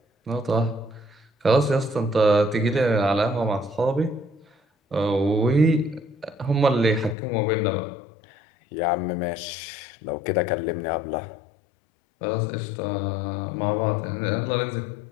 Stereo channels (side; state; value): right; drops out; at 7.2 s